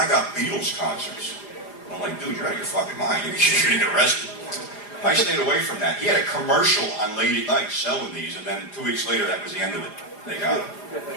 got Beatles concerts. I'm like, dude, you're out of your fucking mind. You're going to get arrested. I stayed away from that. He had a commercial on late at night selling these, and then 2 weeks later, that was the end of it. They got him.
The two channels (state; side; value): late; right; 4.9 ms